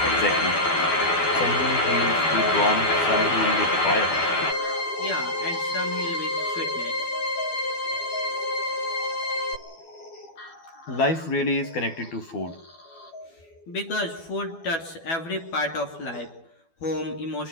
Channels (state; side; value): late; right; 12 ms